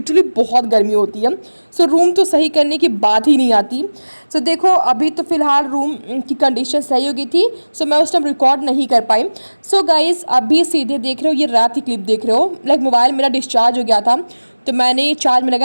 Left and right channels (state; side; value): inverted; both; correlation -1.00